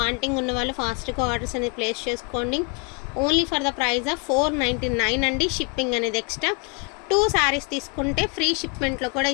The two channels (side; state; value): right; quieter; 34.1 dB